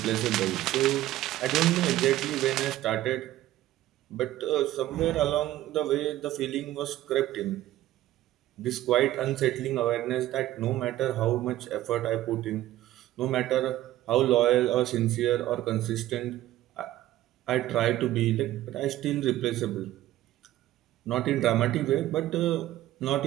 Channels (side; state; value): left; quieter; 14.7 dB